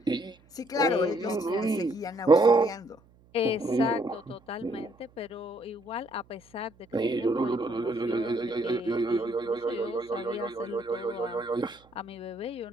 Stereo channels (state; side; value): noise; right; hum, 29 dB below the sound